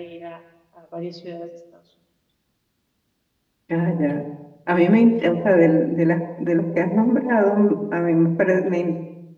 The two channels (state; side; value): identical; both; correlation 1.00